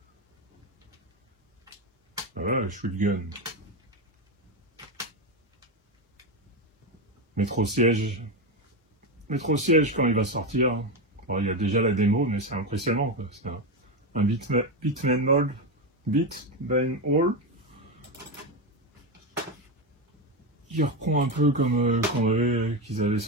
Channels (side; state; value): both; normal; correlation 0.13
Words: Voilà, shotgun. Métro siège. Métro siège quand il va sortir. Bon, il y a déjà la démo, mais c'est impressionnant. C'est un Bitman Mall. Bitman Hall. Qui reprend un peu comme qu'ils avaient